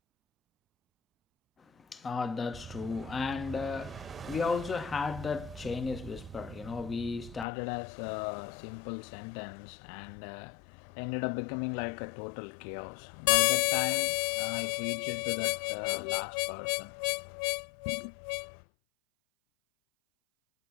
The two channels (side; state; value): right; drops out; at 7.5 s